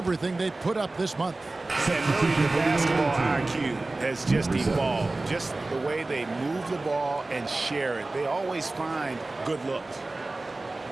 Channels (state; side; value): quieter; left; 3.1 dB